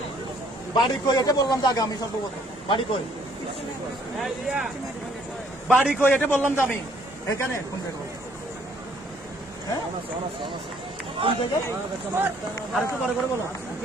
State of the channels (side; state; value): both; normal; correlation 0.63